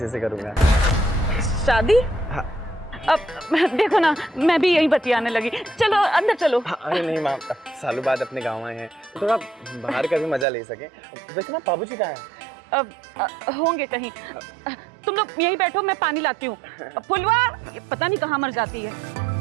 से करूँगा। शादी? हाँ। अब देखो ना, मैं भी यही बतियाने लगी। चलो अंदर चलो। हाँ, अरे नहीं माँ, सालों बाद अपने गाँव आए हैं, थोड़ा बाहर का भी मजा ले सके। वैसे ना बाबूजी कहाँ है? होंगे कहीं। तुम लोग यहीं बैठो, मैं पानी लाती हूँ। फुलवा ये पता नहीं कहाँ मर जाती है।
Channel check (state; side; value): drops out; left; at 10.5 s